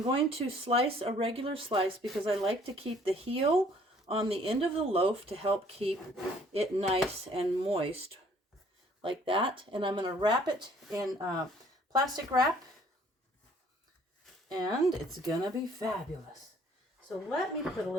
to slice a regular slice because I like to keep the heel on the end of the loaf to help keep it nice and moist like that. And I'm going to wrap it in plastic wrap, and it's going to be fabulous. So let me put a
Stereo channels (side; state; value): both; normal; correlation 0.59